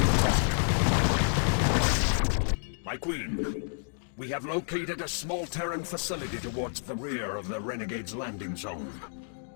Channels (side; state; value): right; silent; digital silence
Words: My queen, we have located a small Terran facility towards the rear of the Renegade's landing zone.